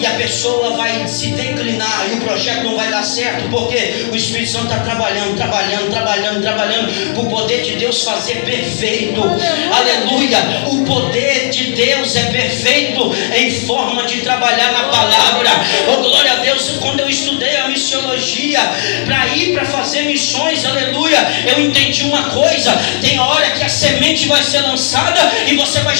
a pessoa vai se declinar, e o projeto não vai dar certo, porque o Espírito Santo está trabalhando. O poder de Deus fazer perfeito. Aleluia. O poder de Deus é perfeito em forma de trabalhar na palavra. Oh, glória a Deus. Quando eu estudei a missiologia para ir para fazer missões, aleluia, eu entendi uma coisa: tem hora que a semente vai ser lançada e você vai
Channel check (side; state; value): right; silent; digital silence